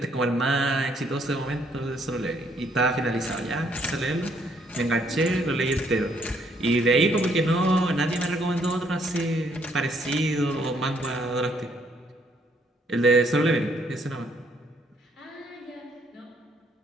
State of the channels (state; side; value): normal; both; correlation 0.68